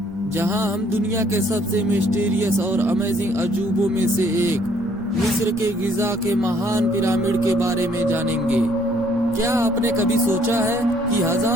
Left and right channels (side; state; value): both; normal; correlation 0.64